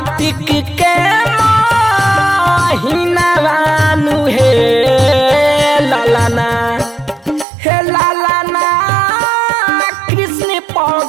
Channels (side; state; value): left; drops out; at 7.5 s